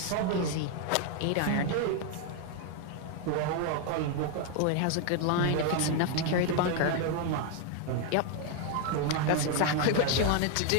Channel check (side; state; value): both; different; correlation 0.01